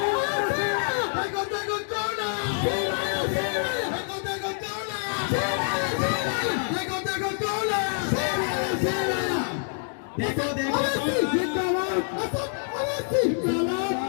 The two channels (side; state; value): right; silent; digital silence